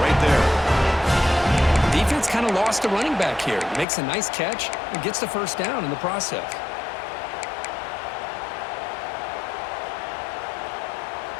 right there. defense kind of lost a running back here. Makes a nice catch and gets the first down in the process.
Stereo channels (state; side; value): drops out; right; at 3.9 s